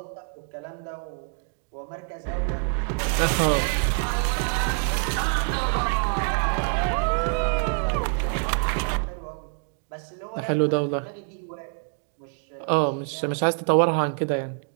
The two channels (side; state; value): left; silent; 56 dB below the other